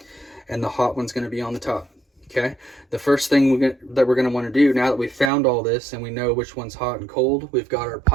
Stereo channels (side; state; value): left; drops out; at 5.3 s